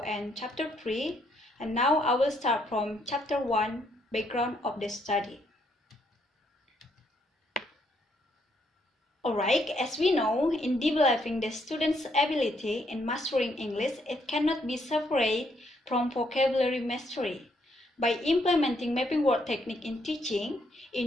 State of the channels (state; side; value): normal; both; correlation 0.73